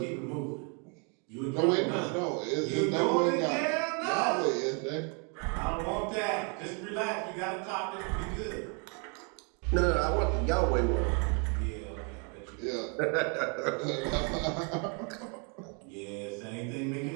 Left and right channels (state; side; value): quieter; left; 36.6 dB